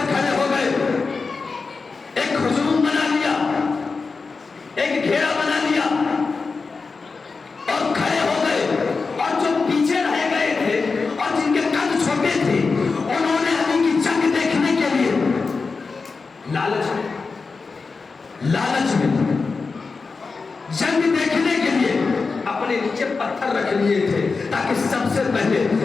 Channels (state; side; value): quieter; right; 4.4 dB